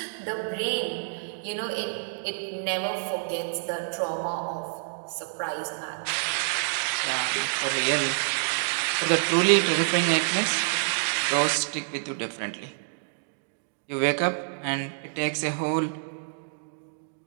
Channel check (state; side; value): silent; left; digital silence